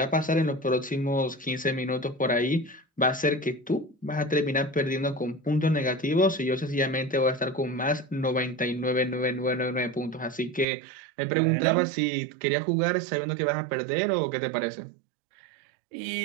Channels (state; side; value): drops out; left; at 10.7 s